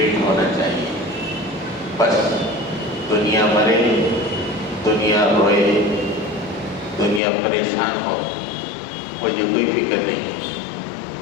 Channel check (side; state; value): right; drops out; at 7.2 s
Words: ہونا چاہیے، بس دنیا مرے، دنیا روئے، دنیا پریشان ہو، مجھے کوئی فکر نہیں ہے،